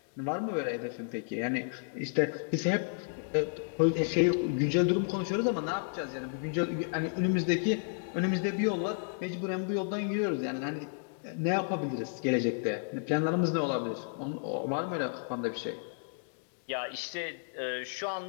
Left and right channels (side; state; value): right; silent; digital silence